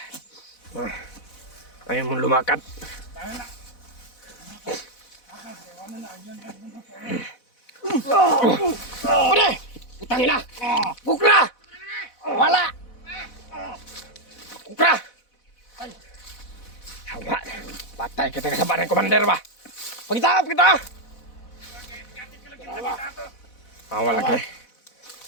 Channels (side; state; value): right; late; 4.1 ms